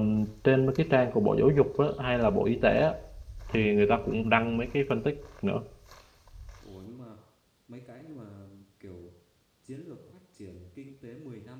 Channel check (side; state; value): both; identical; correlation 1.00